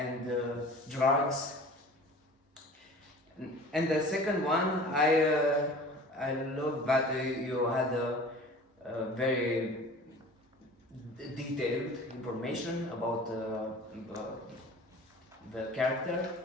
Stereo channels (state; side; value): normal; both; correlation 0.42